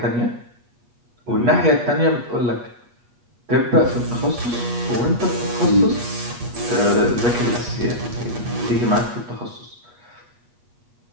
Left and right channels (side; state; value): left; late; 8.3 ms